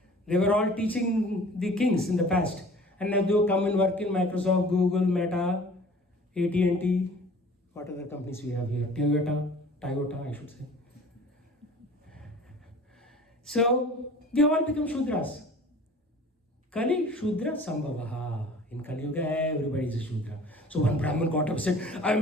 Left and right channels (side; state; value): both; normal; correlation 0.46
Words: They were all teaching the kings in the past. And now they come and work in Microsoft, Google, Meta, AT&T, what other companies we have here? Toyota, I should say. So We have all become Shudras. Kali Shudra Sambhavaha. In Kali Yuga, everybody is a Shudra. So one Brahmin got up and said, I